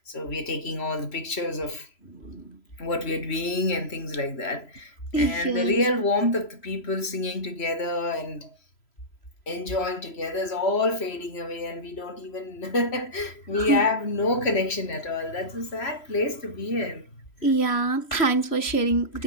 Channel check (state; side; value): late; right; 3.0 ms